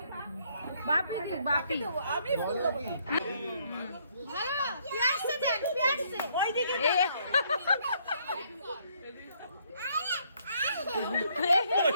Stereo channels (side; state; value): both; inverted; correlation -0.68